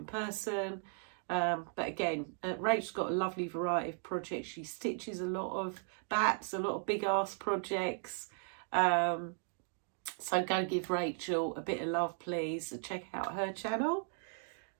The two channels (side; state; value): left; silent; 53 dB below the other